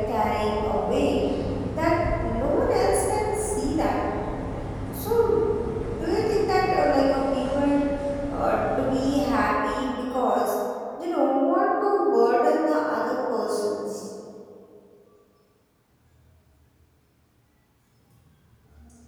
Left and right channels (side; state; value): both; identical; correlation 1.00